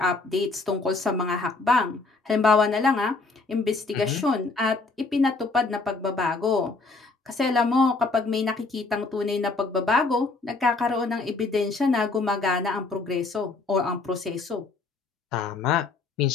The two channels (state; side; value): quieter; right; 3.8 dB